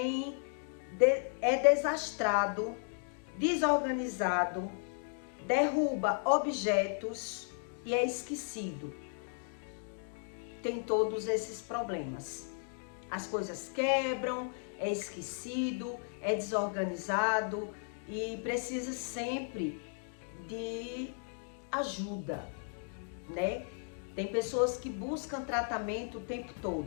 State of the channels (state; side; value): silent; right; 54 dB below the other